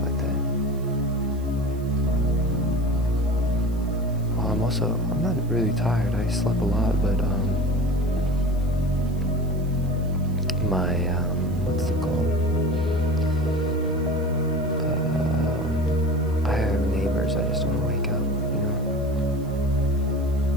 like that. I'm not really tired. I slept a lot, but my what's it called? I have neighbors. I just don't want to wake up, you know.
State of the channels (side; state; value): right; noise; hiss, 26 dB below the sound